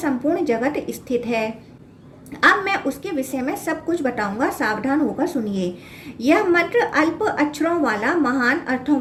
जगत स्थित है। अब मैं उसके विषय में सब कुछ बताऊंगा, सावधान होकर सुनिए। यह मंत्र अल्प अक्षरों वाला, महान अर्थों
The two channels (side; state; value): both; identical; correlation 1.00